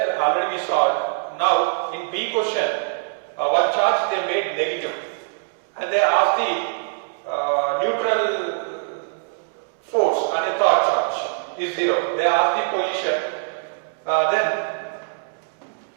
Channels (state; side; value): silent; left; digital silence